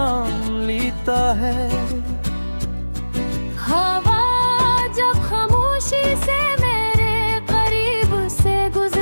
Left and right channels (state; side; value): inverted; both; correlation -1.00